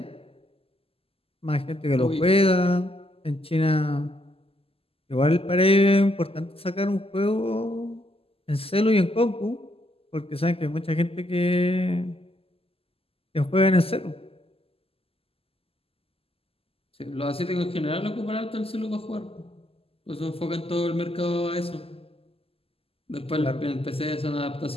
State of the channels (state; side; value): late; right; 0.28 ms